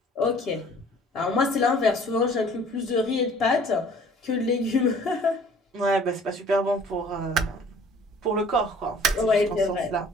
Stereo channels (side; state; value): both; normal; correlation 0.52